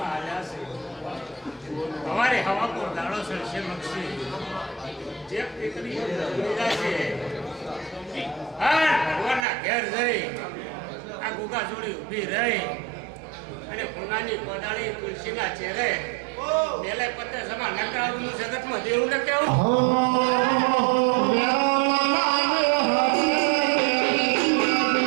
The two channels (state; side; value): drops out; left; at 9.5 s